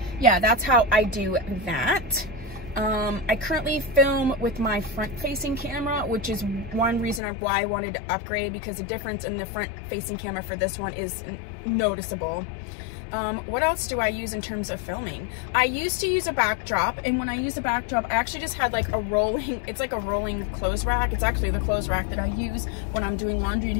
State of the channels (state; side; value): drops out; right; at 7.2 s